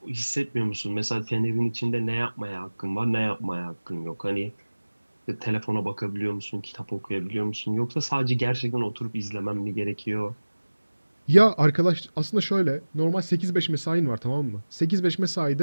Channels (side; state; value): both; inverted; correlation -1.00